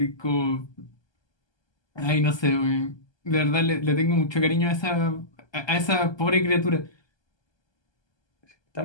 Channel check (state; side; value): late; right; 1.2 ms